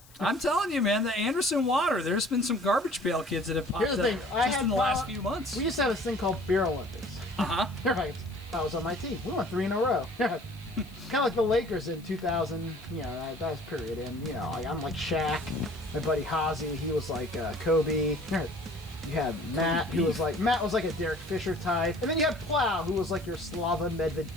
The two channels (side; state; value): left; noise; hiss, 25 dB below the sound